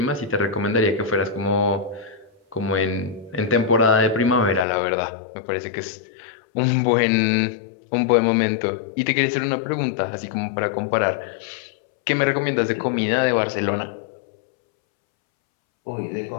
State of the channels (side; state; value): right; drops out; at 4.7 s